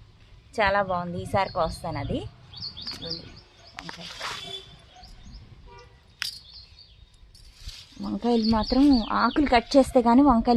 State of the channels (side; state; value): both; identical; correlation 1.00